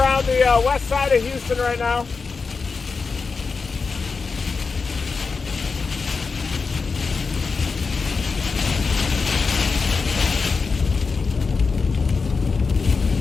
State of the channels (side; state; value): right; quieter; 4.7 dB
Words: the west side of Houston right now.